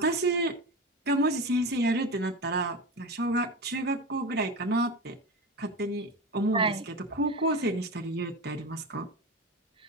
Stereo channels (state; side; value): normal; both; correlation 0.24